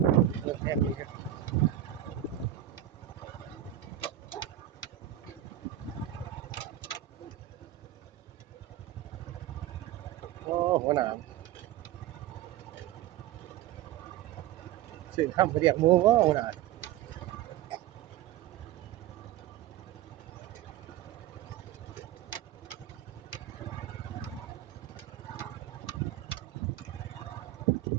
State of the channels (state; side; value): quieter; left; 12.9 dB